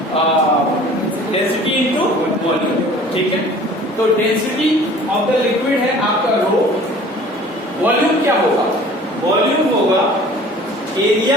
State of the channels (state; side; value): normal; both; correlation 0.47